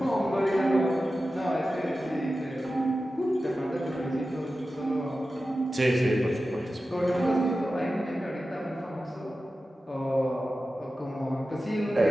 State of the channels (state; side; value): normal; both; correlation 0.93